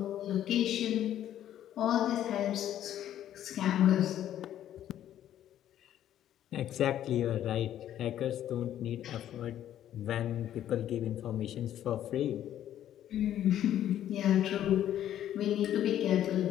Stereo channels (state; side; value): quieter; right; 11.4 dB